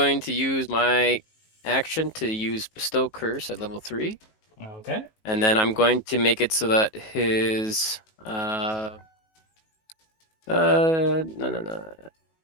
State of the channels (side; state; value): right; late; 19 ms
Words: to use my action to use Bestow Curse at level 3. Okay. And then I'm going to make it so that his no,